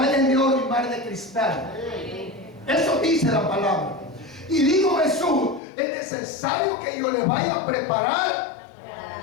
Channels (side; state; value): right; drops out; at 5.6 s